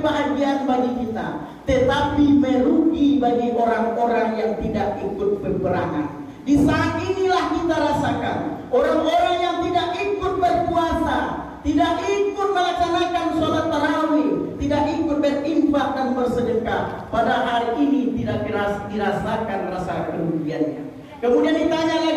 bagi kita, tetapi merugi bagi orang-orang yang tidak ikut peperangan. Di saat inilah kita rasakan orang-orang yang tidak ikut berpuasa, tidak ikut melaksanakan sholat tarawih, tidak ikut berinfak dan bersedekah, pada hari ini tidak dirasakan rasa kerugiannya. Kemudian ditanya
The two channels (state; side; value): identical; both; correlation 1.00